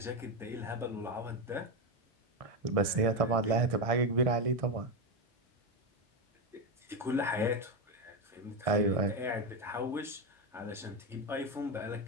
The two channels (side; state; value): both; normal; correlation 0.10